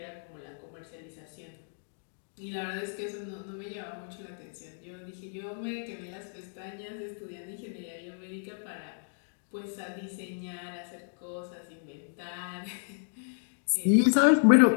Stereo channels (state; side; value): silent; right; digital silence